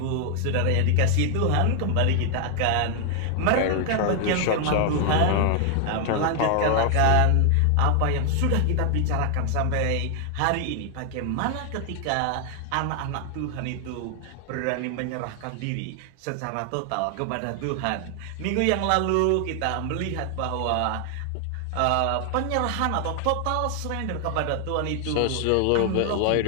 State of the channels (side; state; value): both; different; correlation 0.00